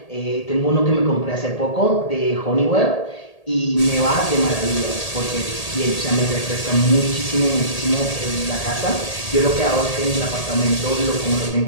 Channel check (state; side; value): late; right; 1.8 ms